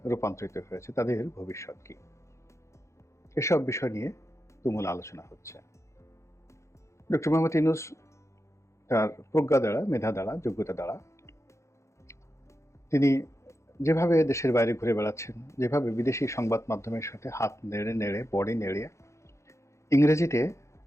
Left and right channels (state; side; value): late; right; 0.14 ms